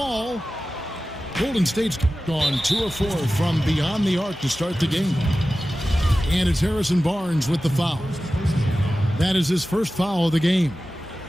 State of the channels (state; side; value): normal; both; correlation 0.95